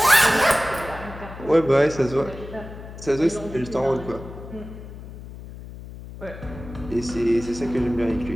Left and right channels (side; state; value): left; noise; hum, 13 dB below the sound